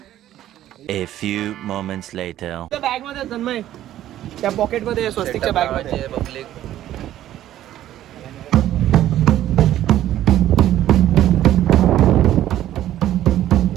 A few moments later. Bag मध्ये तन्मय त्या पॉकेट मध्ये स्वस्तिकच्या बॅग मध्ये पब्लिक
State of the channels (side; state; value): left; quieter; 12.8 dB